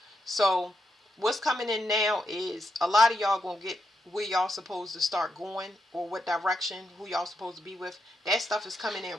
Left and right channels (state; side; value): normal; both; correlation 0.82